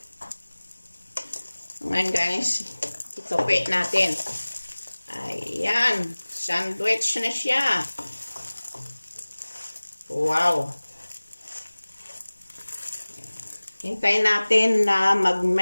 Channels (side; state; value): both; inverted; correlation -1.00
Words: Ngayon guys, itupi natin. Ayan, sandwich na siya. Wow! Hintayin natin na